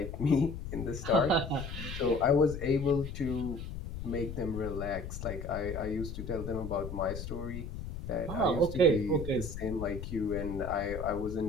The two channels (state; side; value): noise; left; rumble, 8 dB below the sound